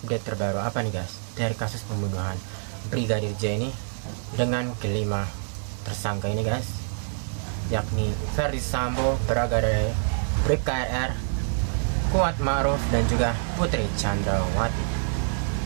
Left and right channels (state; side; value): silent; left; digital silence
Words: terbaru apa nih guys dari kasus pembunuhan Brigadir J ini dengan kelima tersangka ini guys, yakni Ferdi Sambo, Baradae, Bribka RR, Kuat Ma'ruf, dan juga Putri Chandrawati.